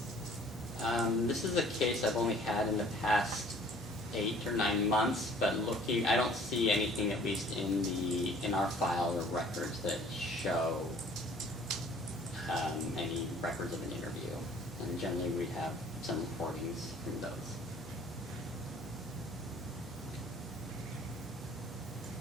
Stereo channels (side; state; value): both; normal; correlation 0.53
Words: This is a case I've only had in the past 8 or 9 months, but looking, I don't see anything, at least in our file or records, that show any records of an interview. And generally, we have some recordings from those.